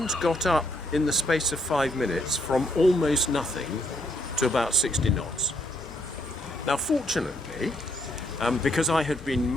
got up in the space of 5 minutes from almost nothing to about 60 knots. Now fortunately, because I had been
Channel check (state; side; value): normal; both; correlation 0.73